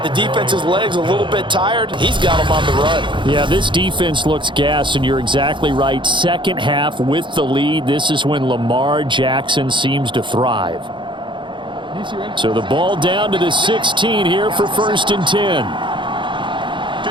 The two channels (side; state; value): left; late; 0.23 ms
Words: the defense's legs a little bit tired. He's got them on the run. Yeah, this defense looks gassed, and you're exactly right. Second half with the lead, this is when Lamar Jackson seems to thrive. So the ball down to the 16 here for 1st and 10.